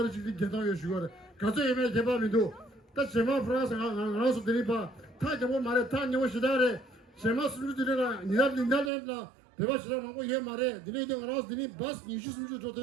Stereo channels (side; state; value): left; drops out; at 8.9 s